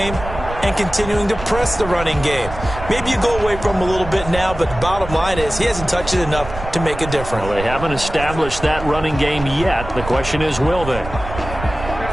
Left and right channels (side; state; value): right; noise; rumble, 10 dB below the sound